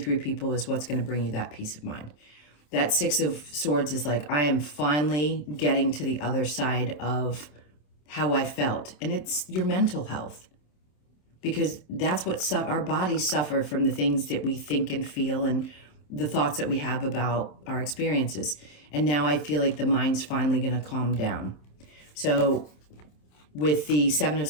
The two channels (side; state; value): right; late; 27 ms